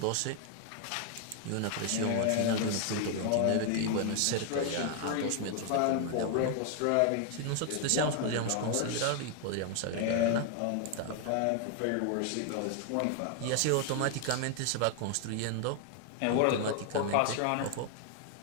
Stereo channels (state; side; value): different; both; correlation 0.00